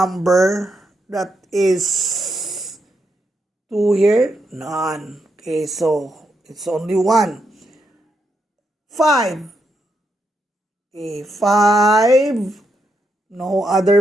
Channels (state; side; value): normal; both; correlation 0.81